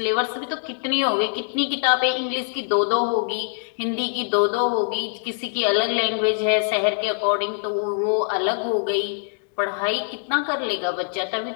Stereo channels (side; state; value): right; silent; digital silence